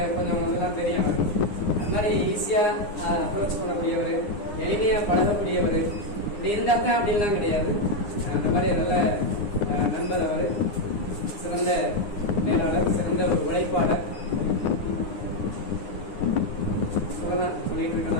கொஞ்சம் இதெல்லாம் தெரியும் அவருக்கு. அது மாதிரி ஈஸியா அப்ரோச் பண்ணக்கூடியவர், எளிமையா பழகக்கூடியவர். இப்படி இருந்தாத்தான் அப்படின்லாம் கிடையாது. அந்த மாதிரி நல்ல நண்பர் அவர். சிறந்த மேலாளர், சிறந்த ஒரு உழைப்பாளர் சொல்லலாம், சொல்லிட்டு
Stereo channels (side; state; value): right; late; 9.8 ms